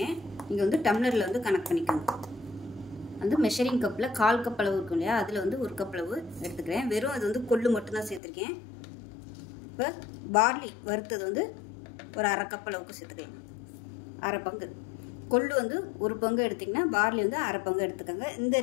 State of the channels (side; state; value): right; drops out; at 8.2 s